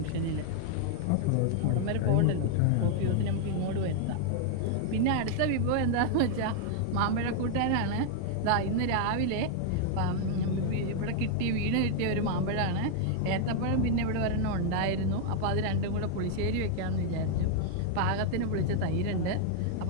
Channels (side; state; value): both; different; correlation 0.00